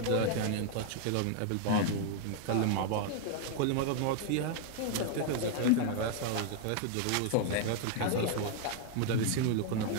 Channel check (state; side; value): different; both; correlation 0.00